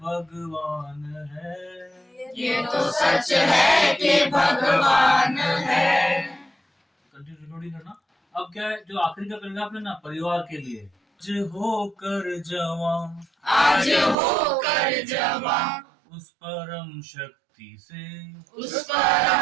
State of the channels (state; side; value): drops out; left; at 14.2 s